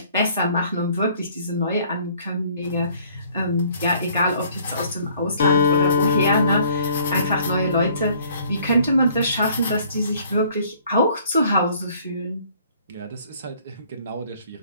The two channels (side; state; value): both; inverted; correlation -0.58